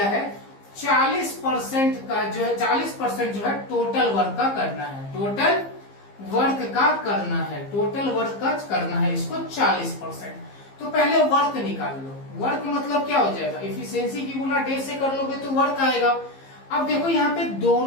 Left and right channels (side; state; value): right; late; 15 ms